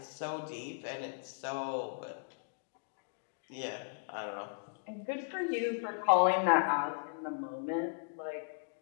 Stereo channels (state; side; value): silent; right; digital silence